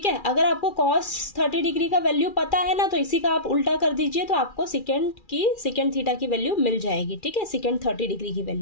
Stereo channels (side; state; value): right; late; 2.4 ms